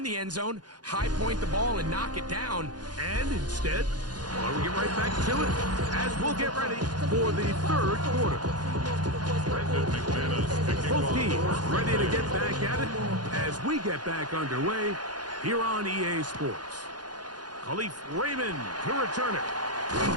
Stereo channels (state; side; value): late; left; 0.69 ms